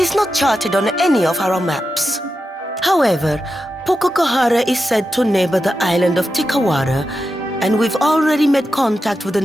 not charted on any of our maps. However, Pukokahara is said to neighbor the island of Tikawara, and we've already made contact with the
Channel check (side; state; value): both; normal; correlation 0.89